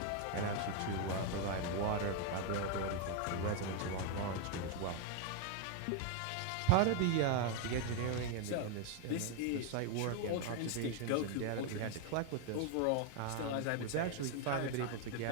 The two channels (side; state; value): both; different; correlation 0.01